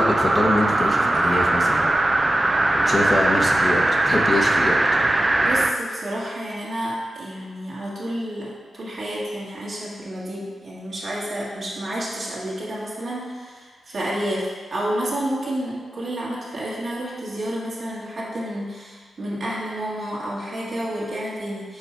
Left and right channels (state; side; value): normal; both; correlation 0.92